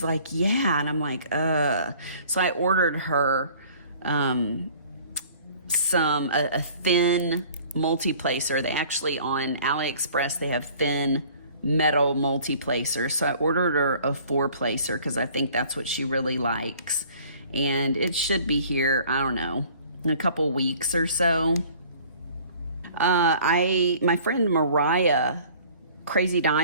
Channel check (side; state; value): both; inverted; correlation -0.51